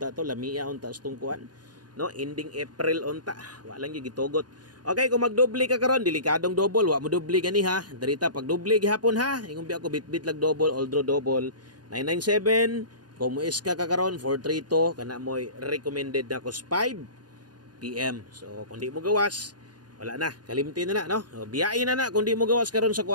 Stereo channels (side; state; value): left; late; 0.70 ms